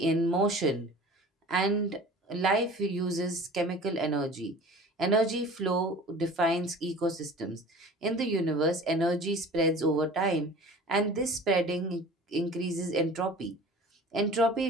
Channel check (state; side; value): normal; both; correlation 0.42